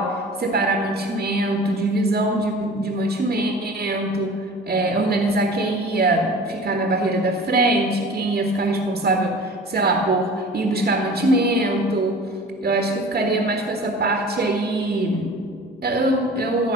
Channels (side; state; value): both; normal; correlation 0.41